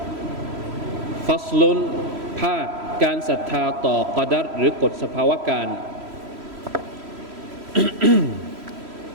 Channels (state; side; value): late; left; 3.1 ms